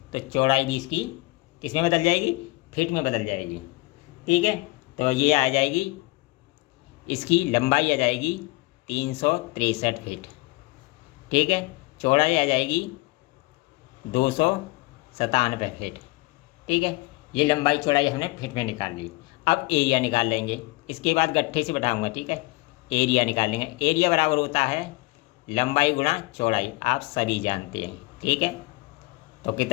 तो चौड़ाई भी इसकी किस में बदल जाएगी, फीट में बदल जाएगी। ठीक है, तो ये आ जाएगी, इसकी लंबाई आ जाएगी 363 फीट। ठीक है, चौड़ाई आ जाएगी 297 फीट। ठीक है, ये लंबाई चौड़ाई हमने फीट में निकाल ली। अब एरिया निकाल लेंगे, इसके बाद गट्ठे से बैठाऊंगा। ठीक है, एरिया निकाल लेंगे। एरिया बराबर होता है लंबाई गुणा चौड़ाई, आप सभी जानते हैं। ठीक है, तो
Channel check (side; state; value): right; quieter; 23.1 dB